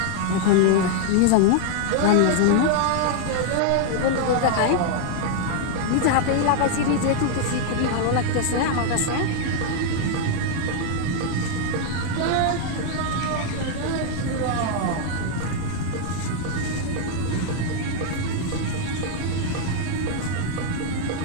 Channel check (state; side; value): different; both; correlation 0.00